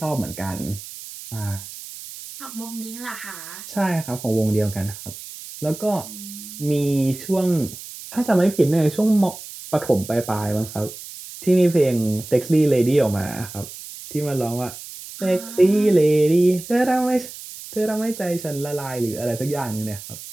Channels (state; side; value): noise; right; hiss, 13 dB below the sound